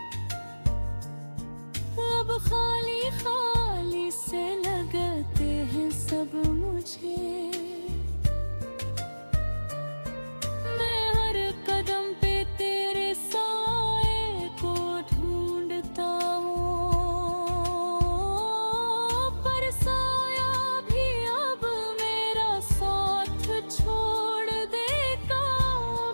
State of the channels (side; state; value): both; inverted; correlation -1.00